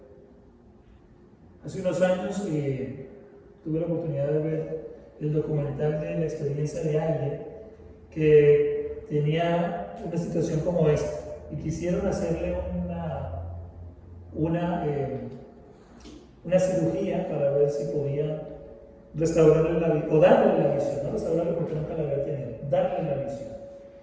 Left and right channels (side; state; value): both; identical; correlation 1.00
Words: Hace unos años tuve la oportunidad de ver el documental de la experiencia de alguien que tenía una situación como esta y quisieron hacerle una cirugía para ver si podían restaurarle la visión, o darle la visión, no restaurarle porque nunca la había tenido, darle la visión.